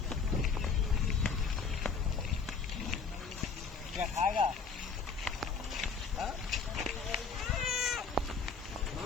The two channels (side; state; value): right; quieter; 5.2 dB